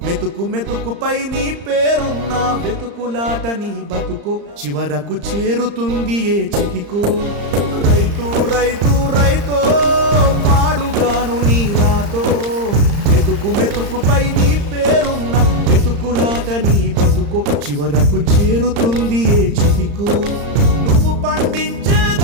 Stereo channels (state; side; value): late; left; 35 ms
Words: మెతుకు మెతుకుపై నీ పేరున్న వెతుకులాట నీ బతుకో చివరకు చేరుతుంది ఏ చితికో రైతు రైతు రైతో పాడుగాను నీ రాతో మెతుకు మెతుకుపై నీ పేరున్న వెతుకులాట నీ బతుకో చివరకు చేరుతుంది ఏ చితికో నువ్వు పండించే